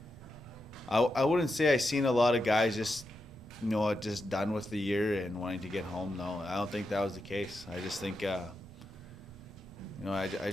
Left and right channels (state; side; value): normal; both; correlation 0.86